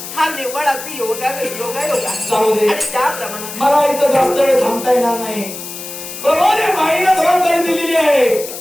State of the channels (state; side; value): noise; left; hiss, 10 dB below the sound